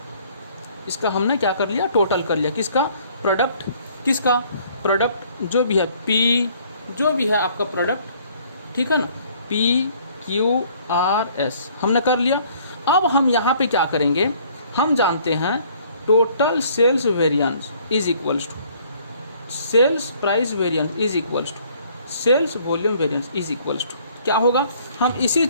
इसका हमने क्या कर लिया, टोटल कर लिया। किसका, प्रोडक्ट, किसका प्रोडक्ट, जो भी है पी, जो भी है आपका प्रोडक्ट, ठीक है ना, PQRS हमने कर लिया। अब हम यहाँ पे क्या करेंगे, हम जानते हैं total sales variance is equals to sales price variance is equals to sales volume variance is equals to क्या होगा, हम इसी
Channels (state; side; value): inverted; both; correlation -0.59